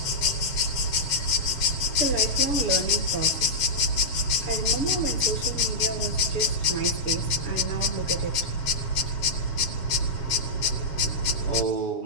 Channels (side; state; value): right; late; 7.4 ms